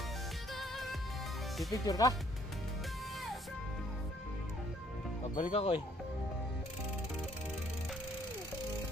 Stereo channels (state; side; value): normal; both; correlation 0.63